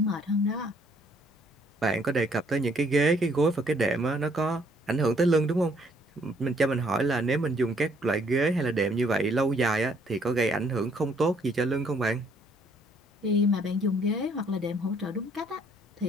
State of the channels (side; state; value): both; normal; correlation 0.65